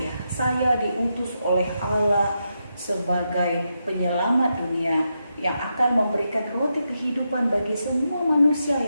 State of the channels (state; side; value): inverted; both; correlation -0.85